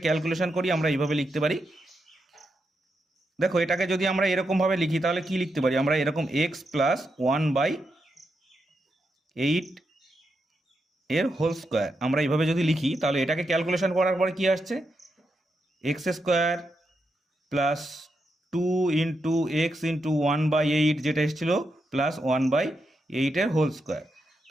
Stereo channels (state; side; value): normal; both; correlation 0.84